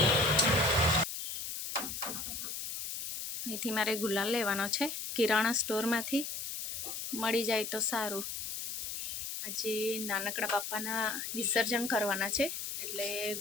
અહીંથી મારે ગુલાલ લેવાનો છે કિરાણા સ્ટોરમાંથી, મળી જાય તો સારું। આજે નાનકડા બાપાના વિસર્જન કરવાના છે એટલે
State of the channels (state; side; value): noise; left; hiss, 5 dB below the sound